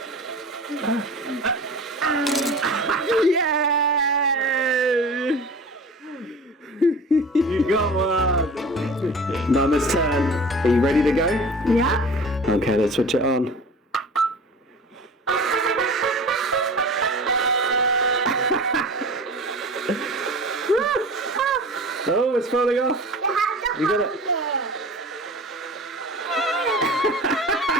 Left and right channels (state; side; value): normal; both; correlation 0.39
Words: Yay! You got one. Mama's turn. Are you ready to go? Yeah. Okay, let's switch it on. Oh, it's falling off. You got it.